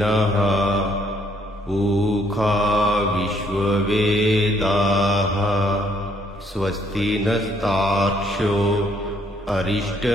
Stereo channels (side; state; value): both; normal; correlation 0.68